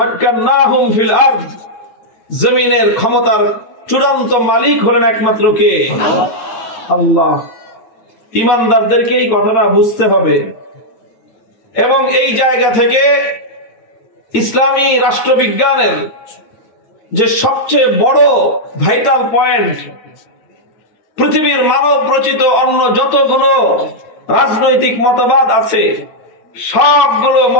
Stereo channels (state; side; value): late; right; 8.8 ms